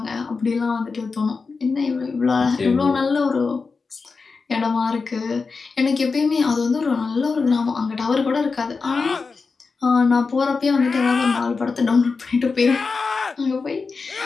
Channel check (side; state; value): right; quieter; 4.5 dB